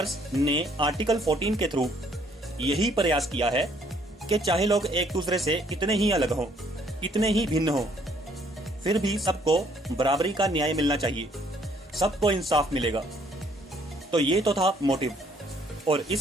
ने आर्टिकल 14 के थ्रू यही प्रयास किया है कि चाहे लोग एक दूसरे से कितने ही अलग हों, कितने ही भिन्न हों, फिर भी सबको बराबरी का न्याय मिलना चाहिए, सबको इंसाफ मिलेगा। तो ये तो था मोटिव, और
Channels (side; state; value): both; normal; correlation 0.64